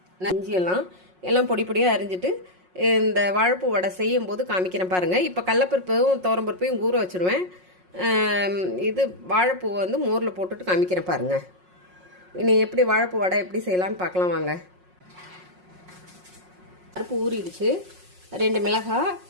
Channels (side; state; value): left; late; 5.5 ms